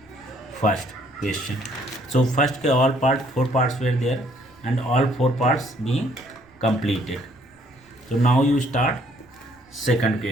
question. So first के all part 4 parts were there and all 4 parts being completed. So now you start second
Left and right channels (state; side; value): noise; right; rumble, 30 dB below the sound